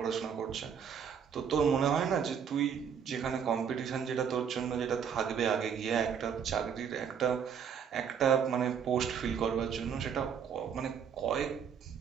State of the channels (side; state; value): left; quieter; 7.4 dB